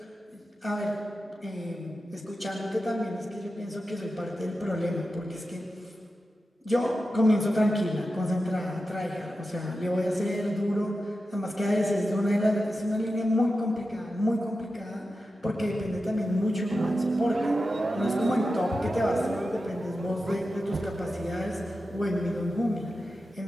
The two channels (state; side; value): normal; both; correlation 0.91